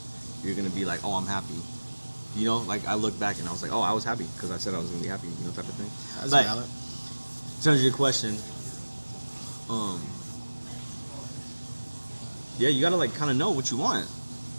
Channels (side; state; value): both; inverted; correlation -1.00